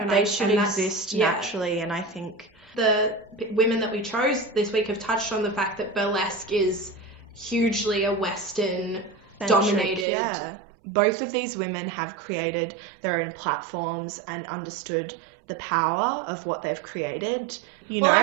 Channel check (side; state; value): left; drops out; at 10.1 s